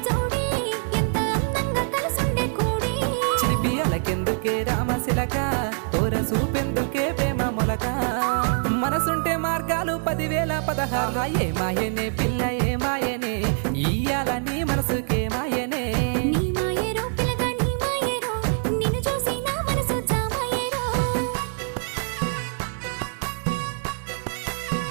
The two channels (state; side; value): silent; left; 56 dB below the other